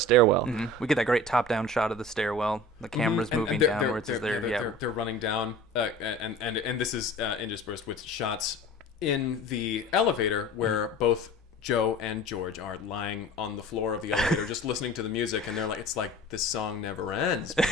Mm-hmm. We get that great top-down shot of the stairwell. The camera's moving downwards. They're running down, and this is interspersed with shots in the elevator where both Joe and George are lying on the floor of the elevator just listening to the music, and they're like, it's like this song never ends,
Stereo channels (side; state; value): both; normal; correlation 0.40